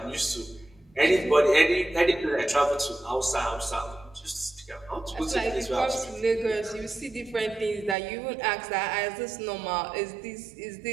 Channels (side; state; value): left; drops out; at 8.0 s